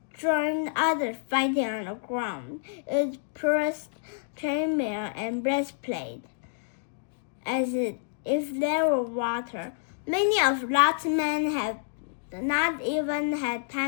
joined others fighting on the ground, it pierced chainmail and breastplate as if there were water. Many of Lot's men had not even had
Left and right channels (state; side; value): silent; right; digital silence